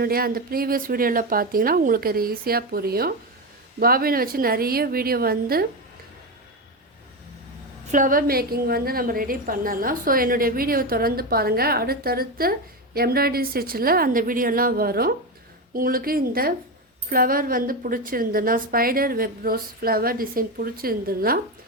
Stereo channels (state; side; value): normal; both; correlation 0.14